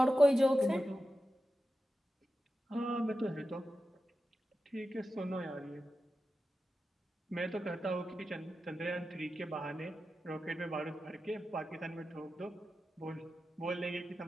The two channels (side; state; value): both; normal; correlation 0.92